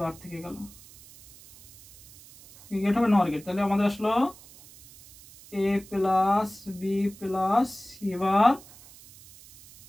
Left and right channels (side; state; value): right; noise; hiss, 22 dB below the sound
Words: থেকে গেল, কি গেট হবে নর গেট। তাহলে আমাদের আসলো A plus B plus C bar,